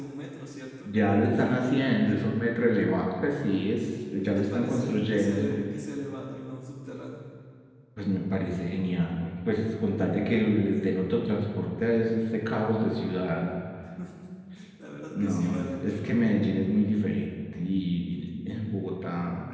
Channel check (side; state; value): both; identical; correlation 1.00